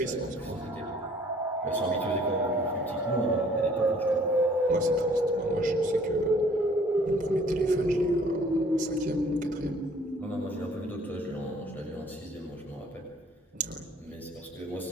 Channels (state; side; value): normal; both; correlation 0.57